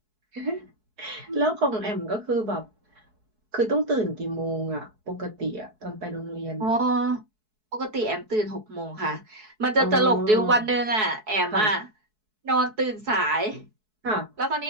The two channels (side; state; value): left; late; 4.7 ms